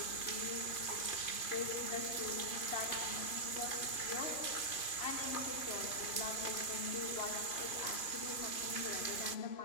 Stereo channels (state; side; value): late; right; 3.0 ms